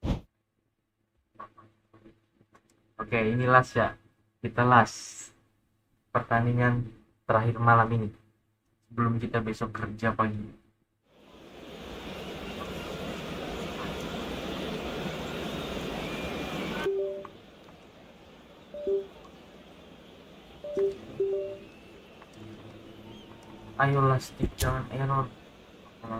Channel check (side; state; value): both; identical; correlation 1.00